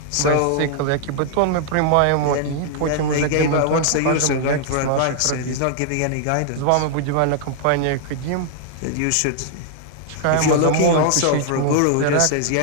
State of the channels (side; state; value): both; different; correlation -0.01